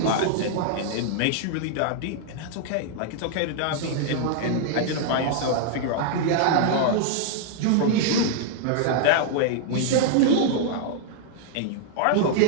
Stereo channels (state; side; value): different; both; correlation -0.01